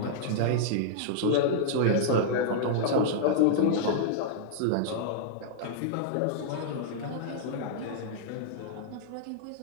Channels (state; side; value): different; both; correlation -0.02